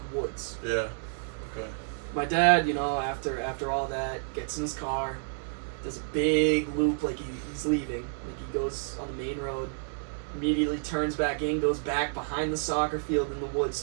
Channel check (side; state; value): left; silent; 58 dB below the other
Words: woods. Yeah. Okay. My dad, after all that, gets in his car, does a big loop like he's leaving. Like he goes on the main road, immediately turns back in, goes back behind the soccer field in the woods